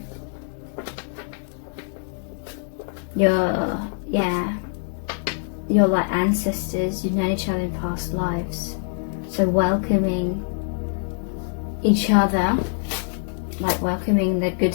You're like ancestors, you've known each other in past lives, so welcoming each other, like welcoming the good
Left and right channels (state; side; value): silent; right; digital silence